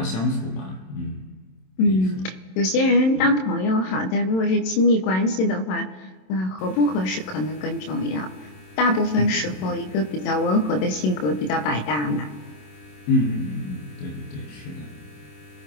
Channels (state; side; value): late; right; 27 ms